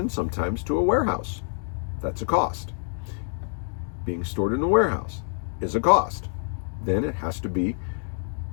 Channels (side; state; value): right; silent; digital silence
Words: sometimes to a warehouse. That's a cost. Being stored in a warehouse is a cost. Then it has to be